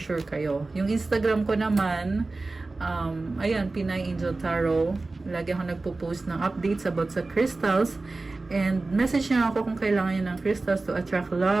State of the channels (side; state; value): left; quieter; 3.4 dB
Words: sure kayo. Yung Instagram ko naman, ayan, Pinay Angel Tarot. Lagi ako nagpo-post ng updates about sa crystals. And message nyo ako kung kailangan nyo ng crystals to attract